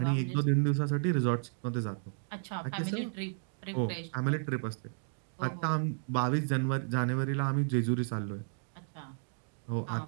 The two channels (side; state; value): left; silent; digital silence